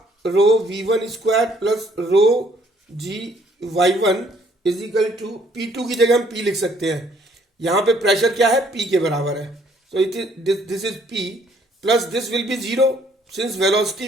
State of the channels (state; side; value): normal; both; correlation 0.63